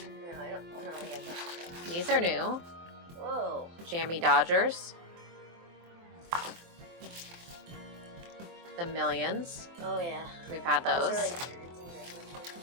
I don't know. Yeah, These are new. whoa. Jammy Dodgers. The Millions. Oh yeah. We've had those. Those are like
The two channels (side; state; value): left; late; 23 ms